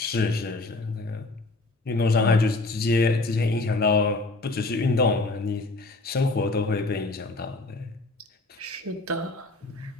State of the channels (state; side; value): quieter; right; 3.1 dB